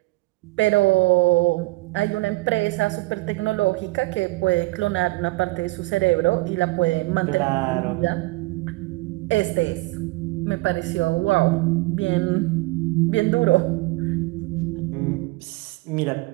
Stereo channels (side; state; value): left; quieter; 22.3 dB